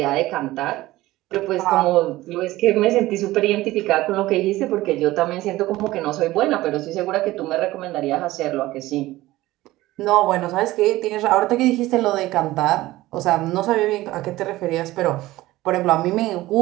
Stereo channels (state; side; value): quieter; left; 17.4 dB